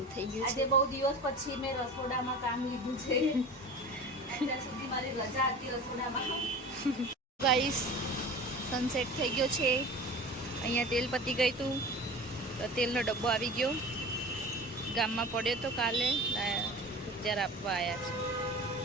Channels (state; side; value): normal; both; correlation 0.35